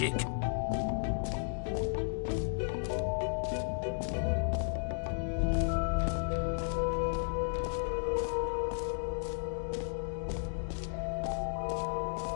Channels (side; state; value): right; silent; digital silence